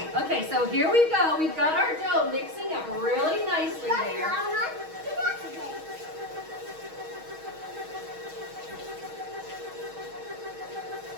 Okay, so here we go. We've got our dough mixing up really nicely there.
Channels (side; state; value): left; late; 6.3 ms